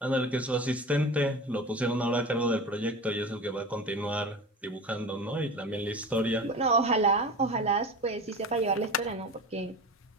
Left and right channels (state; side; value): normal; both; correlation 0.32